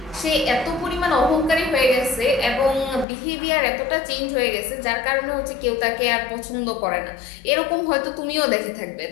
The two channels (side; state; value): right; drops out; at 3.1 s